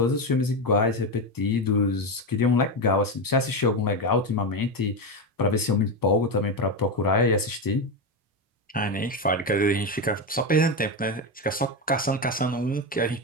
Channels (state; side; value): normal; both; correlation 0.13